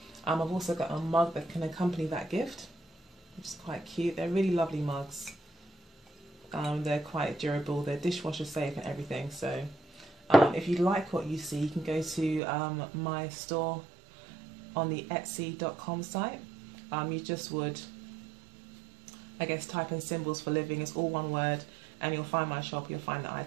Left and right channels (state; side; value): drops out; left; at 12.4 s